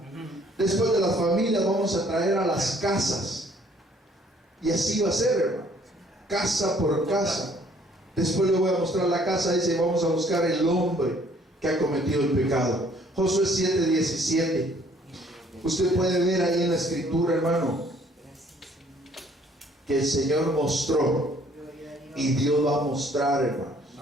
Después de las familias vamos a traer a las casas, y así va a ser, hermano, casa por casa. Después le voy a mostrar la casa, dice: vamos a buscar el hombre que ha cometido el pecado. Josué 7:17. Usted puede ver ahí en la escritura, hermano, que el Señor mostró, y Dios va a mostrar, hermano.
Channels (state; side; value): normal; both; correlation 0.60